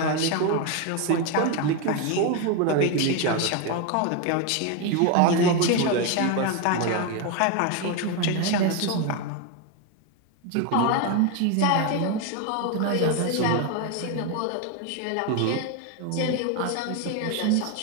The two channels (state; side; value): different; both; correlation 0.02